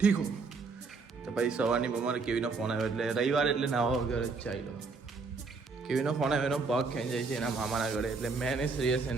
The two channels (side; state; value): left; quieter; 4.4 dB